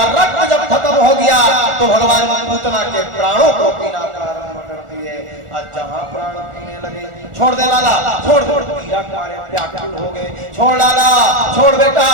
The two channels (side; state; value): left; late; 1.4 ms